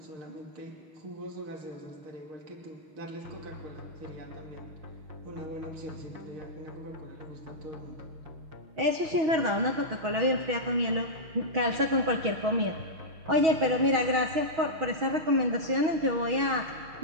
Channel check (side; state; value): left; late; 6.2 ms